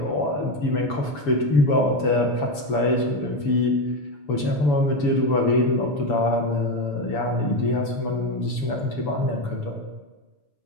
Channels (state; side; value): late; right; 7.0 ms